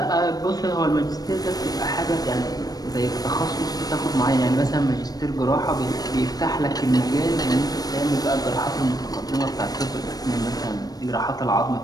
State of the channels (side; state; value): right; late; 0.19 ms